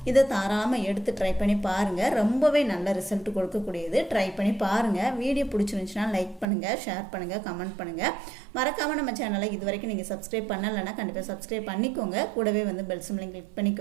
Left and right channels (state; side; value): drops out; left; at 6.5 s